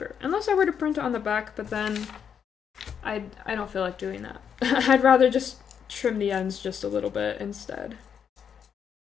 Unless I were to print it on the back, but then I don't feel like doing that. I'd rather just trim the ends just a little bit instead.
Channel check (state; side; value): quieter; right; 7.6 dB